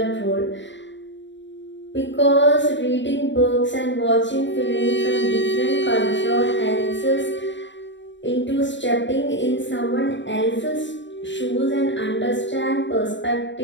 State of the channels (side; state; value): right; late; 0.53 ms